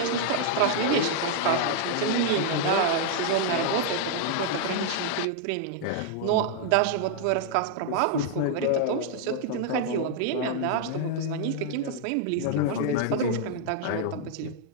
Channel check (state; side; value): different; both; correlation -0.01